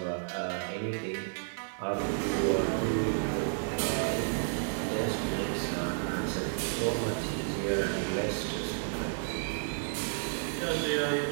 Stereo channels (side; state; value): left; silent; 57 dB below the other